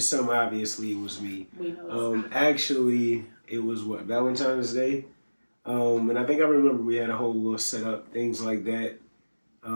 obviously, it was me. We know actually, it was Valentine's Day? And I think I remember we had a whole little setup, things like that.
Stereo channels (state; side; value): inverted; both; correlation -1.00